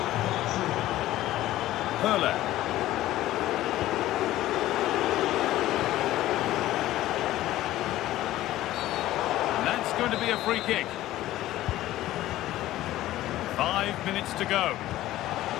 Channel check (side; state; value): right; quieter; 15.0 dB